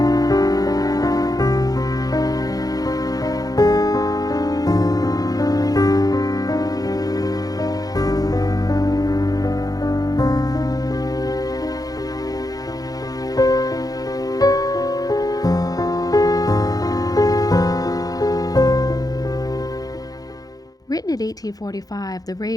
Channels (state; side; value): late; right; 0.18 ms